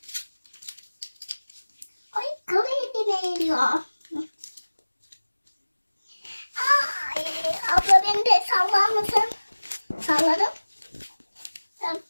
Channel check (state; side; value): inverted; both; correlation -1.00